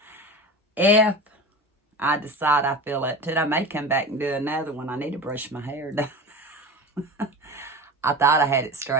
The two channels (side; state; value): both; normal; correlation 0.30